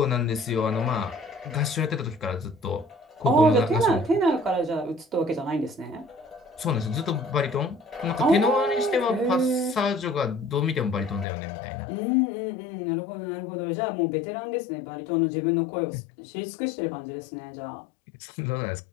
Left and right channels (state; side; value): drops out; right; at 11.2 s